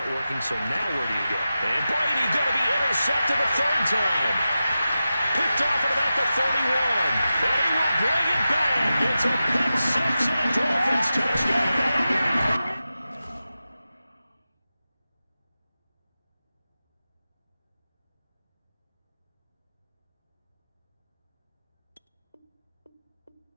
working, so now where do you go? And Brady going to be intercepted a third time. Picked off at about the 31. And he will bring it back. It's a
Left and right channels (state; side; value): inverted; both; correlation -0.93